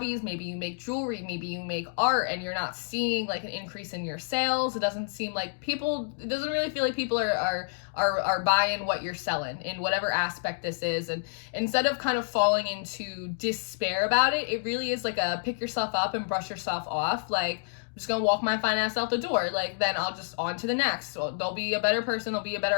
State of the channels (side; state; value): right; silent; digital silence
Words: Maybe you make jewelry, maybe you make art, and you're not seeing like an increase in your sales. It doesn't seem like it doesn't really feel like people are buying what you're selling in whatever aspect this is. And instead of kind of falling into despair about it, it really is like a pick yourself up and brush yourself off. Like, I'm just gonna walk my fine ass out the door. Like, then I'll just on to the next. So there'll be a better person, there'll be a